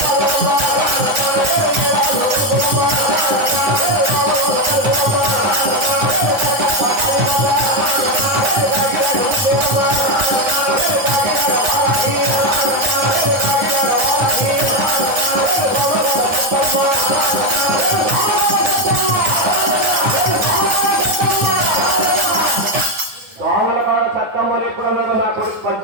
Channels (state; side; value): late; left; 9.6 ms